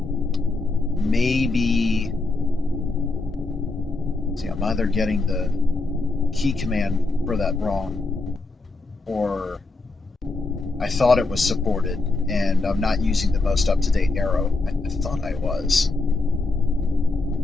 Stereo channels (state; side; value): quieter; right; 3.4 dB